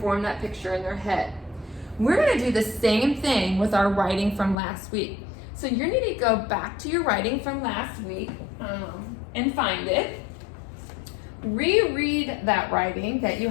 form that picture in their head. We're going to do the same thing with our writing from last week. So you need to go back to your writing from last week and find it. Reread that writing that you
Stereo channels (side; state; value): right; drops out; at 4.5 s